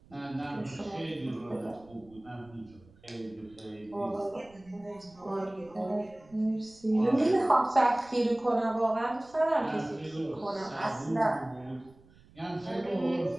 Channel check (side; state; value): right; noise; rumble, 26 dB below the sound